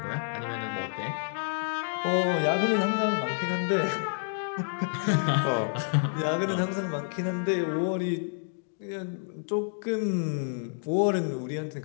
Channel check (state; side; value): silent; right; digital silence